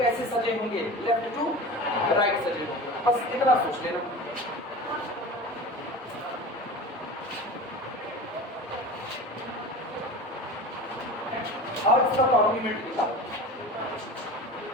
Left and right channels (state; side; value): normal; both; correlation 0.34